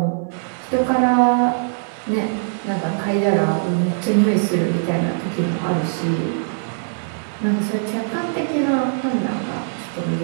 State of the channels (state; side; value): silent; left; digital silence